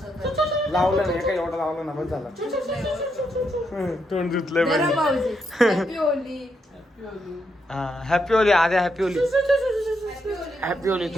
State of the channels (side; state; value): both; normal; correlation 0.80